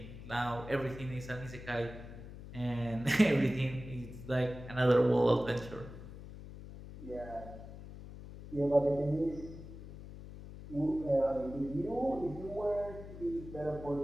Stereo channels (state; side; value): noise; left; hum, 13 dB below the sound